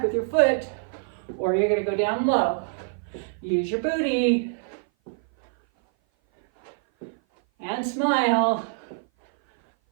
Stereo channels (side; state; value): left; silent; 57 dB below the other